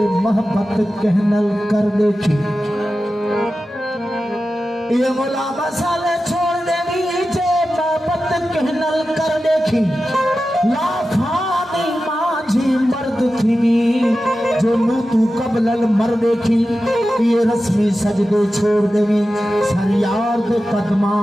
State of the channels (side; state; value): both; normal; correlation 0.93